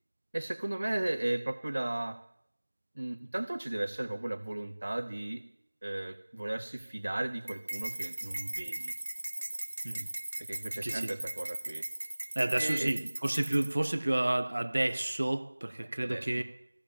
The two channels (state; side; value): inverted; both; correlation -1.00